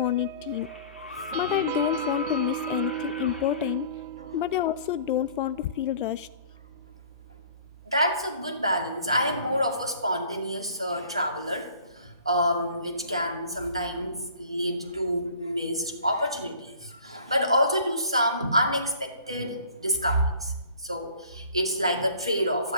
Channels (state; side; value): inverted; both; correlation -0.49